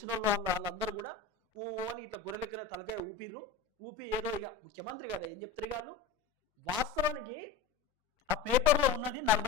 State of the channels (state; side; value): quieter; right; 6.0 dB